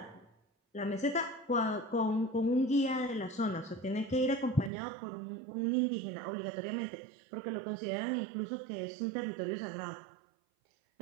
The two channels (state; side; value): drops out; left; at 4.7 s